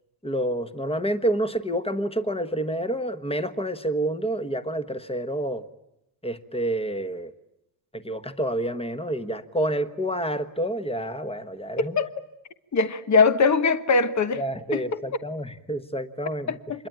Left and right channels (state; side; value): normal; both; correlation 0.08